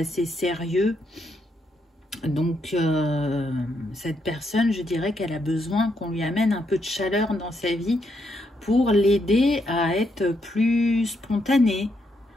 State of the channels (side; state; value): both; normal; correlation 0.78